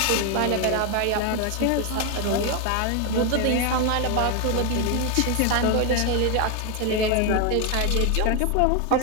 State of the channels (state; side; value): different; both; correlation 0.01